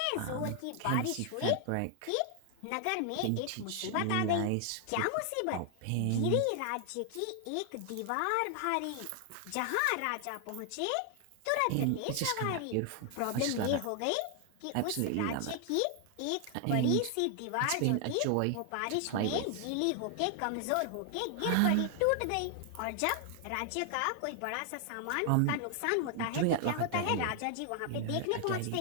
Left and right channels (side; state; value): both; different; correlation 0.00